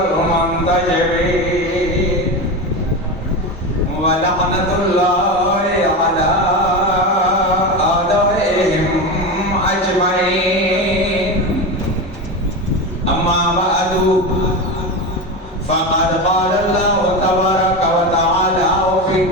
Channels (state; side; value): normal; both; correlation 0.21